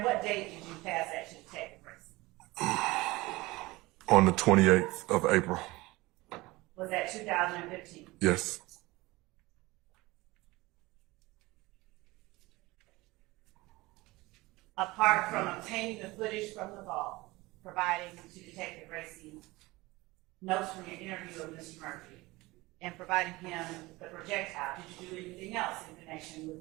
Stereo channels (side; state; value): left; quieter; 21.1 dB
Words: what date did you pass that to Detective Racy? on the 28th of April. Was that 2015? Yes. Apart from obtaining the footage from the vault, providing to Detective Racy notes from your interview with Mr. Murphy, and providing him the projectile, did you do anything else in connection